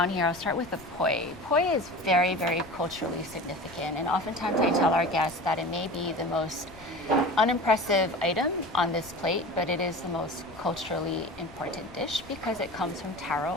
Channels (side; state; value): left; noise; rumble, 22 dB below the sound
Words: here, I'll start with the poi. Poi is very, very culturally significant, and oftentimes I tell our guests that it may be the most unimpressive item on this plate, but it is the most culturally important dish because it comes from